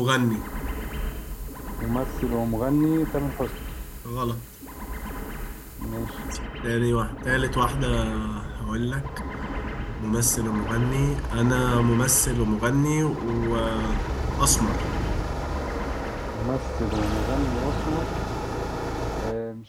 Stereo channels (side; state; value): both; identical; correlation 1.00